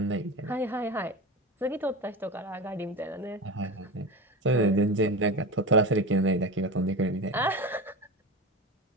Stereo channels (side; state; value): both; normal; correlation 0.23